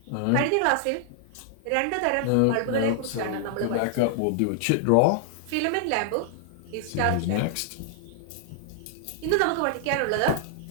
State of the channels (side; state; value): both; different; correlation -0.01